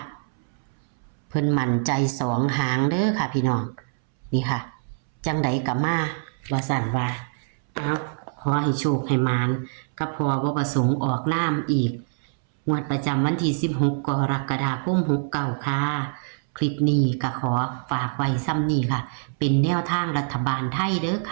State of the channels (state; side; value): silent; left; 62 dB below the other